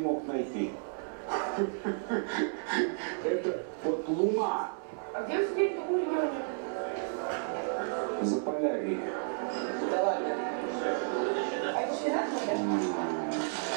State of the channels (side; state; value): left; silent; digital silence